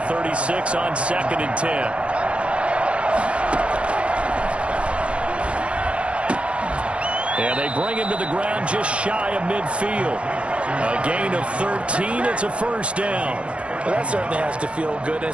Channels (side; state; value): left; late; 0.060 ms